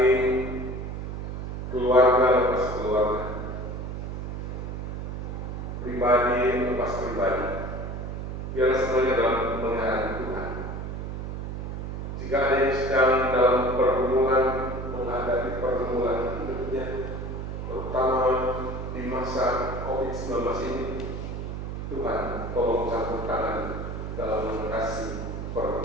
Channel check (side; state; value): right; noise; hum, 6 dB below the sound